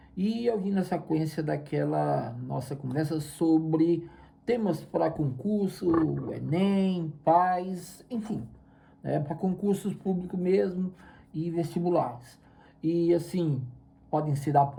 e eu vim na sequência daquela nossa conversa sobre temas para concurso, Enem, PAS, enfim, né, para concursos públicos mesmo e vestibulares. E assim, podem ser da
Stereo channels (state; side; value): identical; both; correlation 1.00